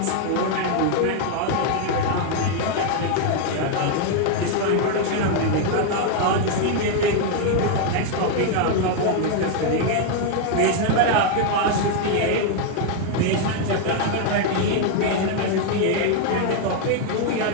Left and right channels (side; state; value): both; different; correlation 0.00